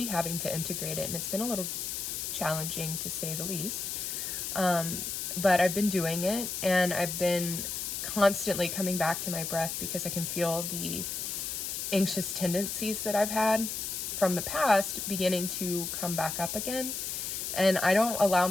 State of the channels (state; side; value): noise; left; hiss, 4 dB below the sound